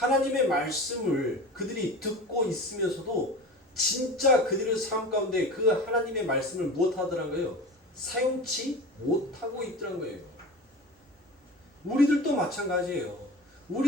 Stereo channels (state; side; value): normal; both; correlation 0.33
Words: 말씀을 그들이 듣고 있으면서도 진짜 그들의 삶 가운데 그 하나님의 말씀을 무엇하더란 거예요? 사용치 못하고 있더란 거예요. 우리들도 마찬가지예요.